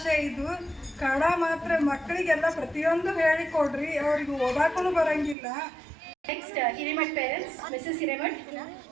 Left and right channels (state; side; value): drops out; left; at 5.4 s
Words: ಇದು. ಕನ್ನಡ ಮಾತ್ರ ಮಕ್ಕಳಿಗೆಲ್ಲ ಪ್ರತಿಯೊಂದು ಹೇಳಿಕೊಡ್ರಿ, ಅವ್ರಿಗೆ ಓದಾಕೂ ಬರೋಂಗಿಲ್ಲ. Next, Hiremat parents, Mrs. Hiremat.